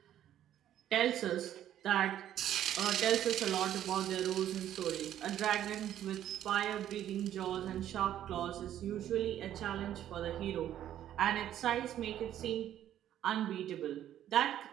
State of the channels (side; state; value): left; quieter; 11.4 dB